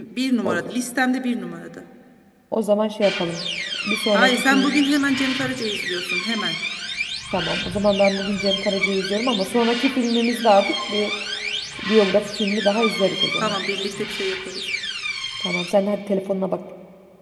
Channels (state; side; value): identical; both; correlation 1.00